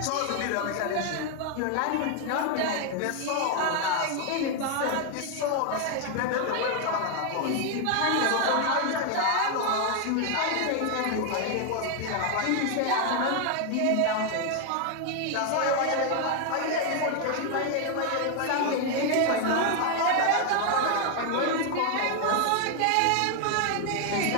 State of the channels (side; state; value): both; different; correlation 0.00